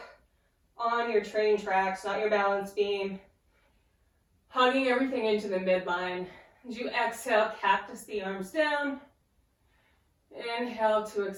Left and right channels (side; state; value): both; identical; correlation 1.00